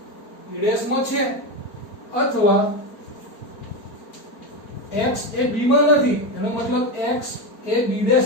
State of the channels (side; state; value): right; late; 4.4 ms